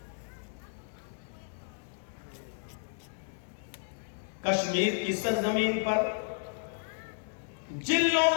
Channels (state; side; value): silent; right; digital silence